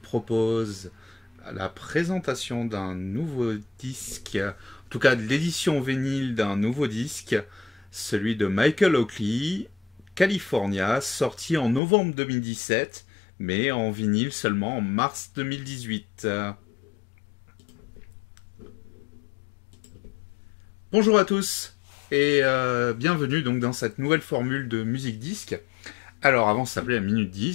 la présentation d'un nouveau disque, en tout cas de l'édition vinyle d'un nouveau disque, celui de Michael Oakley, California, sorti en novembre 2017, mais en vinyle seulement en mars 2018. Bonjour à tous et bienvenue donc dans cette nouvelle formule de Musique Disque. Alors avant ça s'appelait la Minute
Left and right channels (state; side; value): drops out; right; at 11.8 s